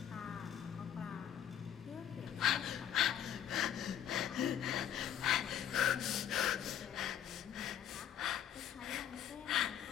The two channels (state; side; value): quieter; right; 9.8 dB